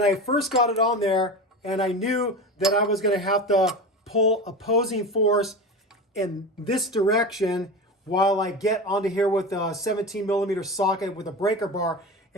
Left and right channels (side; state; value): both; normal; correlation 0.27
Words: I first got it on there and I knew that I was going to have to pull opposing force in this direction while I get onto here with a 17 millimeter socket with a breaker bar